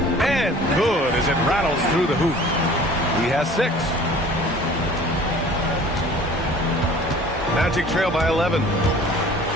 And good as it rattles through the hoop. He has 6. Magic trail by 11.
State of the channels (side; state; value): both; normal; correlation 0.47